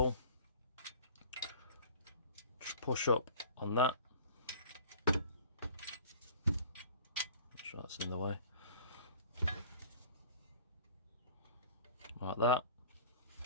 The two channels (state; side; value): inverted; both; correlation -0.45